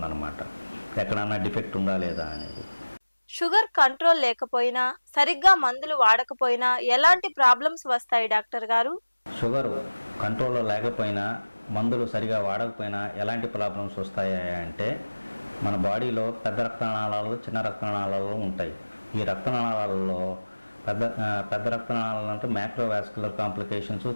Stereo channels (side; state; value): both; inverted; correlation -1.00